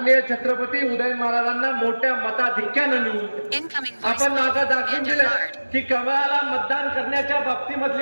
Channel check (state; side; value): inverted; both; correlation -1.00